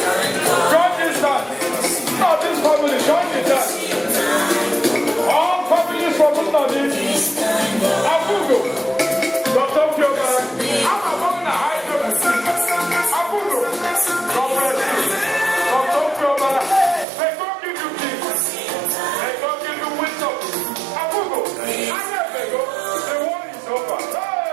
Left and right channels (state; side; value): drops out; left; at 17.1 s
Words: Join this time. Not this family. Join this time. All families from Mustadi, Abugo, Dr. Fiona, I'm among the high Abugo, God bless you. Dr. Fiona, may God give you peace. May God give you wisdom. Abugo, I never go. The war is over.